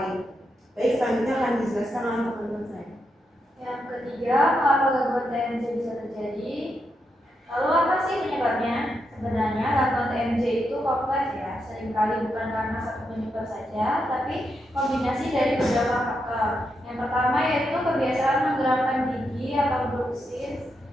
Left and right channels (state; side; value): normal; both; correlation 0.83